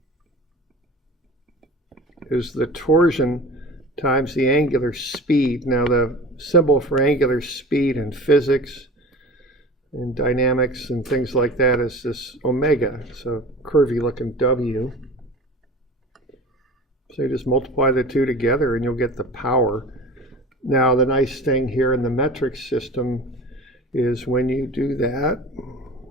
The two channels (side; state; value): both; normal; correlation 0.37